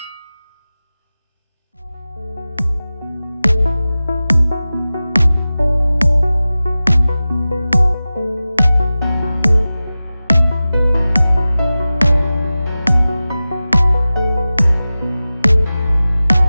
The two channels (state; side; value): inverted; both; correlation -0.96